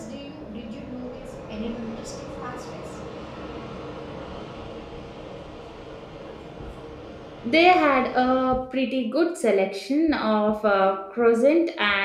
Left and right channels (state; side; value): identical; both; correlation 1.00